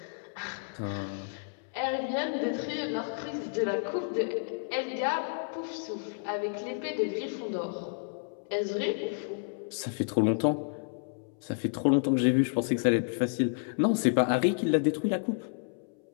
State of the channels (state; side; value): silent; right; 57 dB below the other